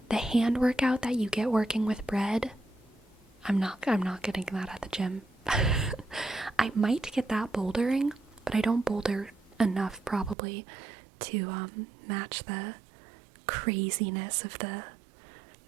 The hand workout that you get working with bread, I'm not getting that at the gym. I might get that bouldering, but I don't boulder enough probably to match the craziness of the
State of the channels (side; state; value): left; drops out; at 10.4 s